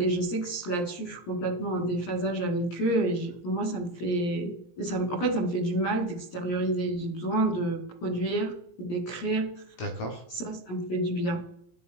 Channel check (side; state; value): right; late; 17 ms